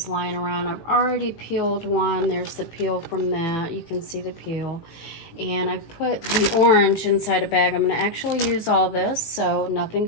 lying around. I've already peeled one. There's the peel from that. You can see the peel. And I put the orange inside a bag. I'm going to actually use all this so nothing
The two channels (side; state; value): right; late; 18 ms